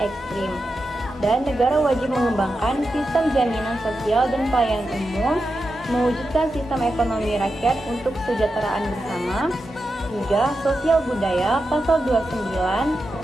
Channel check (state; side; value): normal; both; correlation 0.89